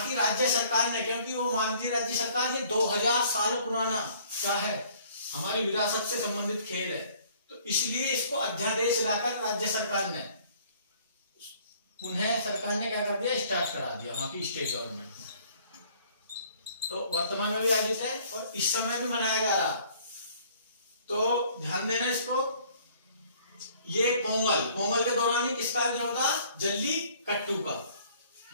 की राज्य सरकार ने, क्योंकि वो मानती राज्य सरकार ये 2000 साल पुराना क्या है, हमारी विरासत से संबंधित खेल है, तो इसलिए इसको अध्यादेश लाकर राज्य सरकार ने क्या कर दिया? स्टार्ट करा दिया वहां की स्टेट गवर्नमेंट ने। तो वर्तमान में भी आयोजित है और इस समय भी मनाया जा रहा। तो ध्यान देना इसको। ये पोंगल के दौरान ही किसका आयोजन होता? जल्ली कट्टू का।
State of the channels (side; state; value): both; inverted; correlation -0.57